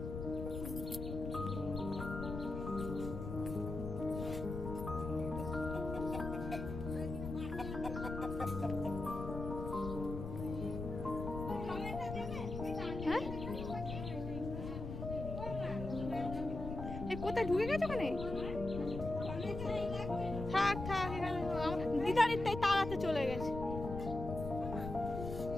কোথায় ঢুকে গেছে ওখানে? থাক থাক, দিদারির তাই তাড়াতে চলে গেছে।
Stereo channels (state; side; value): noise; left; rumble, 6 dB below the sound